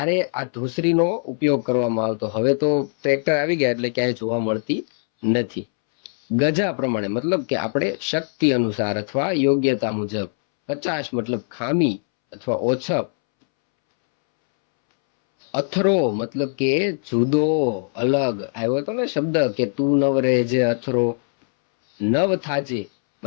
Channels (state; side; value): silent; right; 65 dB below the other